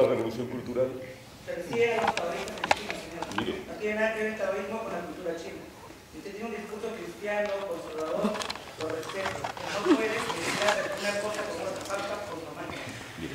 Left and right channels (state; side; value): identical; both; correlation 1.00